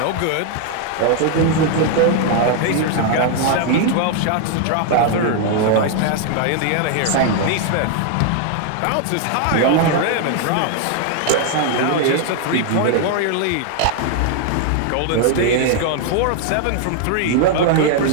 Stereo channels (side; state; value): both; different; correlation 0.00